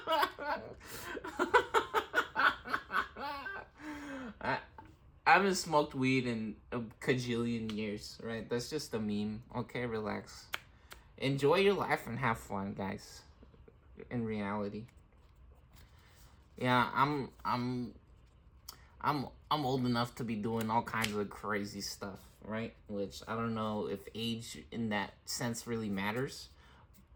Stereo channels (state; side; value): identical; both; correlation 1.00